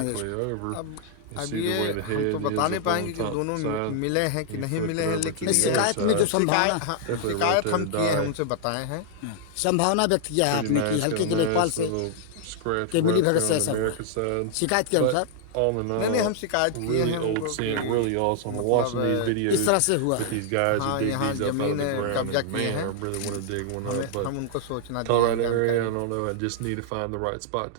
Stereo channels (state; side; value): different; both; correlation -0.01